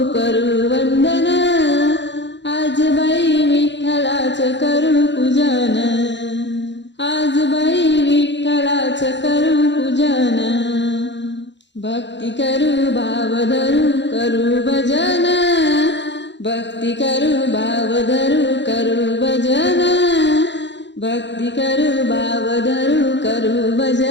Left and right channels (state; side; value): late; right; 0.52 ms